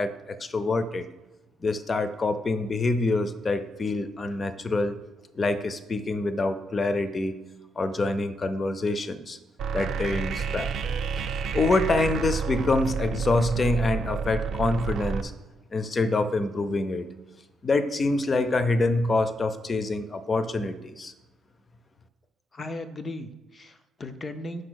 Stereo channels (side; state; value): both; normal; correlation 0.82